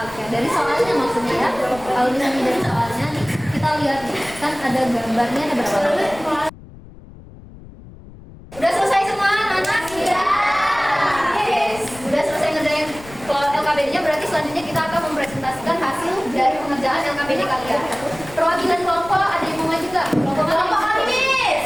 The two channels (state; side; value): noise; left; rumble, 19 dB below the sound